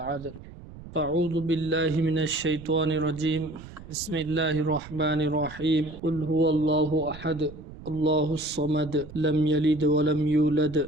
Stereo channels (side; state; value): right; noise; rumble, 16 dB below the sound